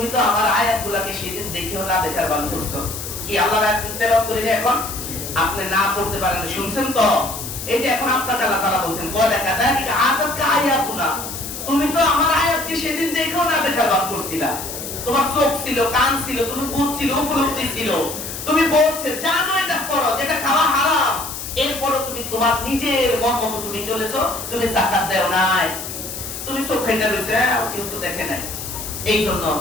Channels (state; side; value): noise; left; hiss, 8 dB below the sound